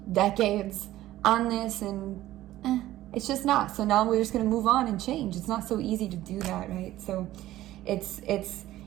decades on this, and it's just not. So now we're just going to move on and change. It's not so easy to do that, right? So it's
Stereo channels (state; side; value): quieter; left; 14.9 dB